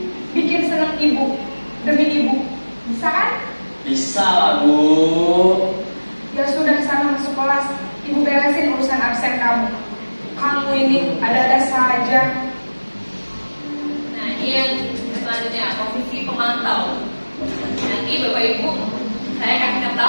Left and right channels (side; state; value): both; inverted; correlation -1.00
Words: Bikin seneng ibu. Demi ibu. Bisa kan? Bisa lah, Bu. Ya sudah sana masuk kelas. Ibu beresin urusan absen kamu. Kamu ini ada-ada saja. Nah, ini yang selanjutnya, posisi pemantau. Nanti Bapak Ibu, saya kasih